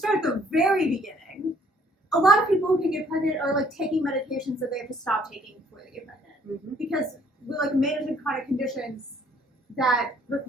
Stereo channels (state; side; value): normal; both; correlation 0.62